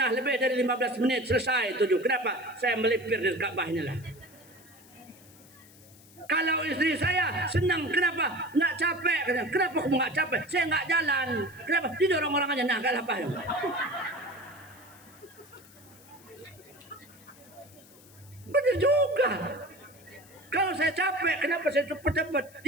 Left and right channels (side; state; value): left; noise; hiss, 24 dB below the sound